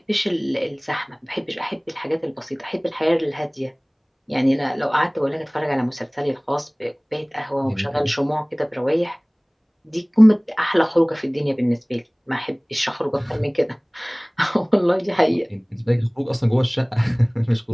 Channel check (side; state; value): both; identical; correlation 1.00